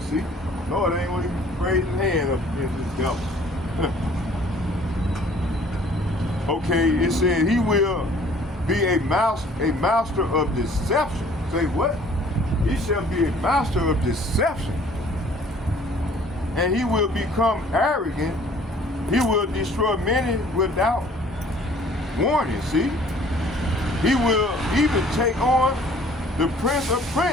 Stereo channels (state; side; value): normal; both; correlation 0.54